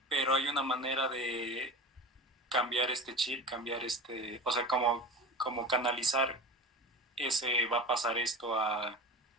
Pero hay una manera de cambiar este chip, o sea, como canalizar ese va a pasar esto a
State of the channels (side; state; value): both; normal; correlation 0.31